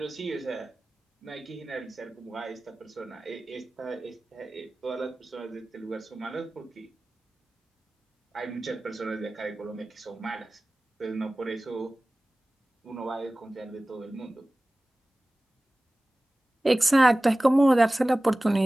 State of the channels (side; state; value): both; normal; correlation 0.98